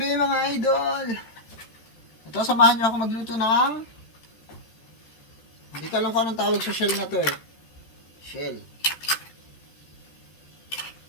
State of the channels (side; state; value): right; late; 13 ms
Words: mga idol. Ito, samahan niyo ako magluto ng hindi ko alam kung anong tawag sa shell na to eh. Shell.